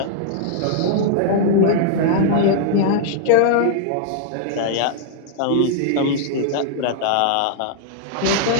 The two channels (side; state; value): both; different; correlation -0.01